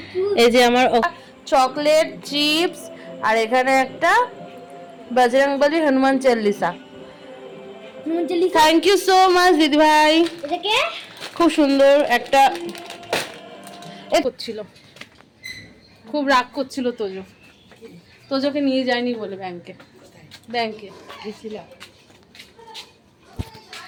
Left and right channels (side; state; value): both; identical; correlation 1.00